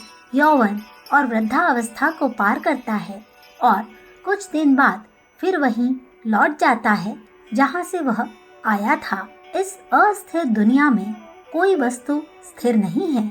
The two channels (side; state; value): both; identical; correlation 1.00